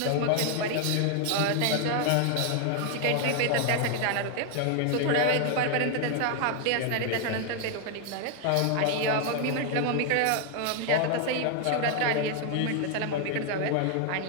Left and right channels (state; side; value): different; both; correlation 0.00